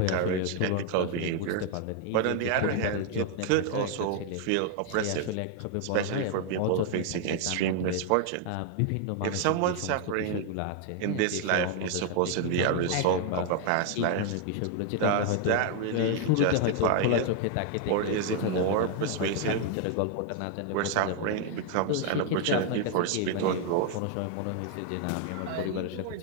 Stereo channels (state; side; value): different; both; correlation 0.00